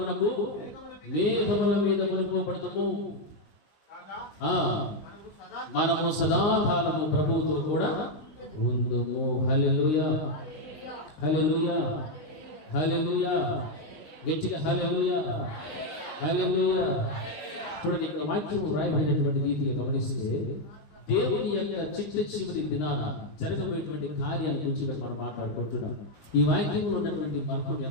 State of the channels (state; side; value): late; right; 19 ms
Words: మేఘముల మీద కొనిపోబడతాము. మనము సదాకాలము ప్రభువుతో కూడా ఉందుము. హల్లెలూయా, హల్లెలూయా, హల్లెలూయా. గట్టిగా హల్లెలూయా, హల్లెలూయా. చూడండి, ఇక్కడ వాక్యం రాయబడినటువంటి రీతిగా గమనిస్తే దేవుని యొక్క చివరి దినాన జరగబోయేటువంటి కార్యాల గురించి ఇక్కడ మనం మాట్లాడుకుంటున్నాం. ఈ వాక్యంలో ఉన్నటువంటి మర్మం